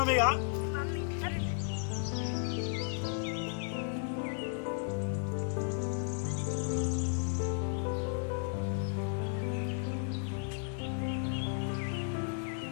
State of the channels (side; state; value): right; silent; 55 dB below the other